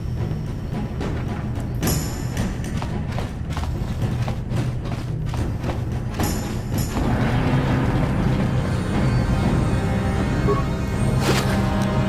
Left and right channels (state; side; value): identical; both; correlation 1.00